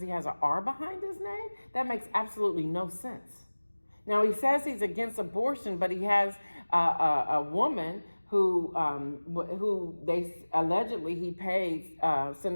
he has an R behind his name? That makes absolutely no sense. Now, he says he's against abortion, but he has a woman who they allegedly he paid,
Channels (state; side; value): inverted; both; correlation -1.00